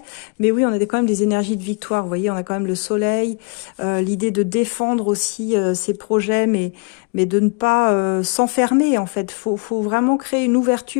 Mais oui, on a quand même des énergies de victoire. Vous voyez, on a quand même le soleil, l'idée de défendre aussi ses projets, mais de ne pas s'enfermer, en fait. Faut vraiment créer une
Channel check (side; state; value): right; quieter; 35.5 dB